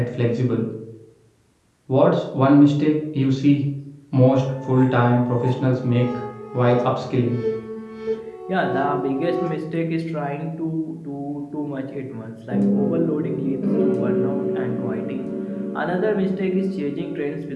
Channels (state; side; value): identical; both; correlation 1.00